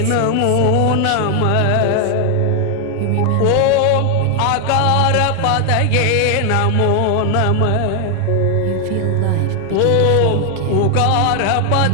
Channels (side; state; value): both; different; correlation 0.00